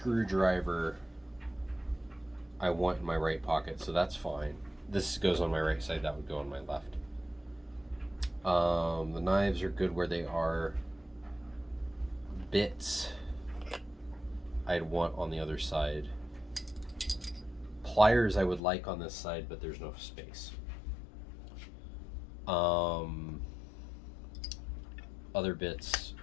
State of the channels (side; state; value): right; drops out; at 18.6 s